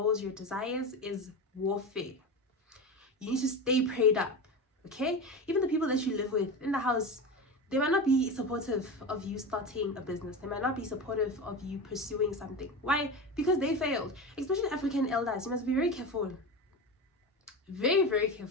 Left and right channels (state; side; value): normal; both; correlation 0.24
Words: your desires is warfare. You need to stay prayed up, okay? Even the people that you live with in the house, they might not be supportive of you starting a business. They might not be supportive of you pursuing something. Why? Because they failed. Especially African elders, you must be very careful. Very, very